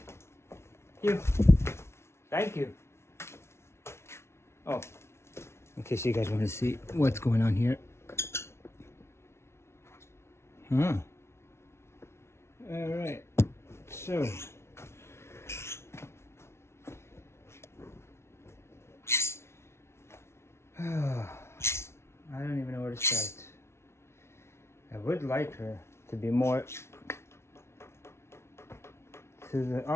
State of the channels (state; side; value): late; right; 0.13 ms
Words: You. Thank you. Oh. In case you guys want to see what's going on here. Huh. All right. So. I don't even know where to start. I would like her to be more to the